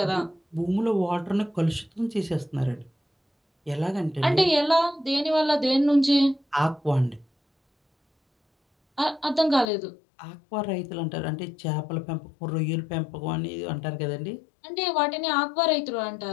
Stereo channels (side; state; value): right; drops out; at 9.7 s